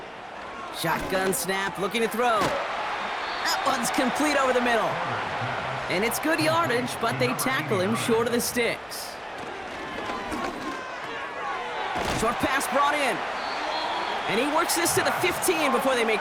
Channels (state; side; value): identical; both; correlation 1.00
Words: Shotgun snap, looking to throw. That one's complete over the middle. And it's good yardage, but they tackle him short of the sticks. Short pass brought in. And he works this to the 15 before they